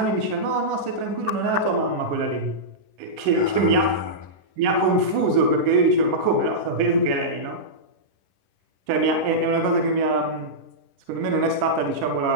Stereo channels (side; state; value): left; late; 10 ms